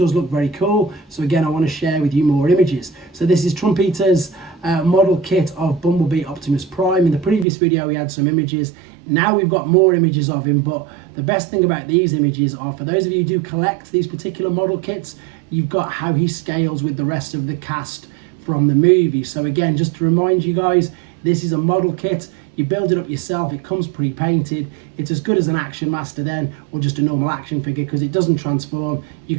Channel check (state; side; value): drops out; left; at 7.5 s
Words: look very cool. So again, I want to share with you more images. So this is Trumpeter's model kit of Bumblebee Optimus Prime. In the previous video, we had some images. Now we've got more images of him, but the best thing about these images are, for those of you who do collect these particular model kits, you've got how he scales with the rest of the cast from the movie. So again, just to remind you guys, this is a model kit. You build it up yourself. It comes pre-painted. It's as good as an Action Master then, or just a normal action figure, because it doesn't transform. You